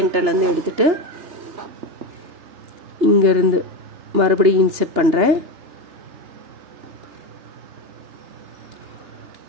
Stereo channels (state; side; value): late; left; 3.3 ms